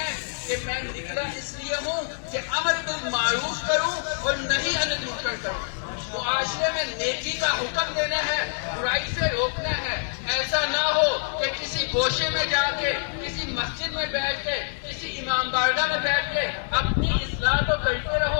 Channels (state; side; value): silent; right; digital silence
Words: کہ میں نکلا اس لیے ہوں کہ امر بالمعروف کروں اور نہیں عن المنکر کروں۔ معاشرے میں نیکی کا حکم دینا ہے، برائی سے روکنا ہے۔ ایسا نہ ہو کہ کسی گوشے میں جا کے، کسی مسجد میں بیٹھ کے، کسی امام بارگاہ میں بیٹھ کے اپنی اصلاح تو کرتے